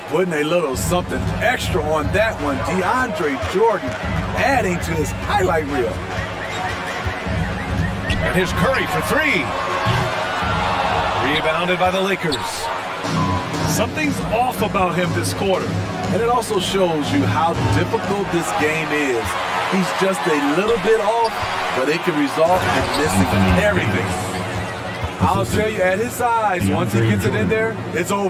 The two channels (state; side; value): identical; both; correlation 1.00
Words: Putting a little something extra on that one. DeAndre Jordan adding to his highlight reel. And here's Curry for 3. Rebounded by the Lakers. Something's off about him this quarter. And it also shows you how difficult this game is. He's just a little bit off, but it can result in missing everything. I'll tell you, at his size, once he gets it in there, it's